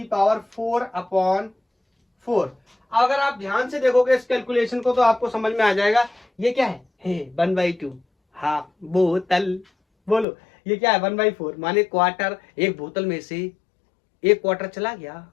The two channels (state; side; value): drops out; right; at 10.2 s